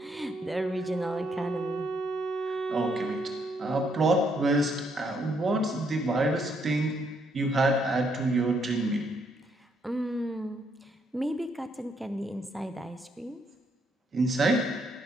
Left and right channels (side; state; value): both; normal; correlation 0.73